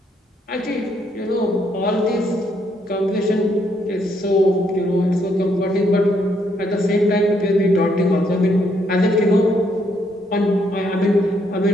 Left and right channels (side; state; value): both; normal; correlation 0.73